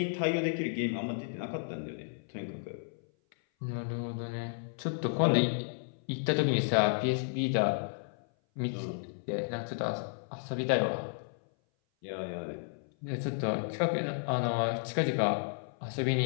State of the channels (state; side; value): silent; right; 56 dB below the other